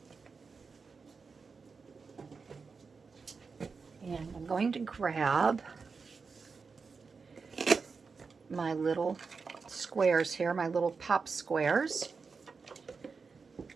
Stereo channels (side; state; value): left; quieter; 4.9 dB